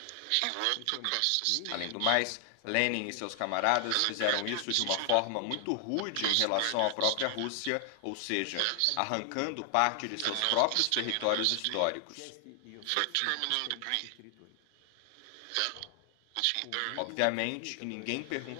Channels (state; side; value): different; both; correlation 0.00